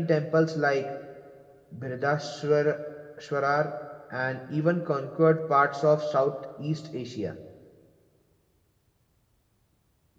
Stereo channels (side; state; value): both; identical; correlation 1.00